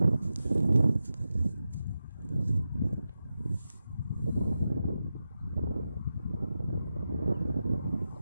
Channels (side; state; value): both; inverted; correlation -0.90